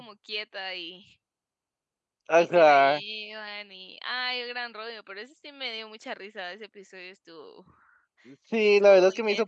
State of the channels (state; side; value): identical; both; correlation 1.00